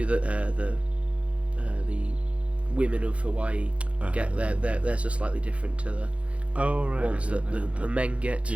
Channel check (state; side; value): late; left; 0.062 ms